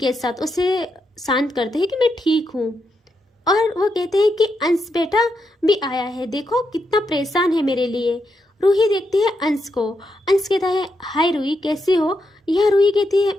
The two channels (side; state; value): both; normal; correlation 0.83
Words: साथ, उसे शांत करते हैं कि मैं ठीक हूँ। और वो कहते हैं कि अंश बेटा भी आया है, देखो कितना परेशान है मेरे लिए। रूही देखती है अंश को। अंश कहता है हाय रूही कैसी हो? यह रूही कहती है